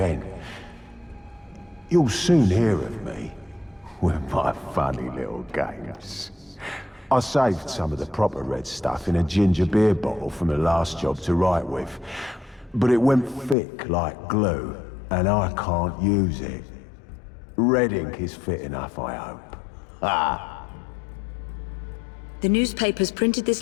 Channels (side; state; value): right; drops out; at 13.6 s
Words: You'll soon hear of me with my funny little games. I saved some of the proper red stuff in a ginger beer bottle from the last job to write with. But it went thick like glue, and I can't use it. Red ink is fit enough, I hope. Ah. The newspapers printed this